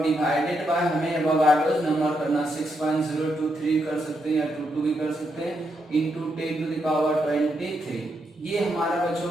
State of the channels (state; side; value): normal; both; correlation 0.80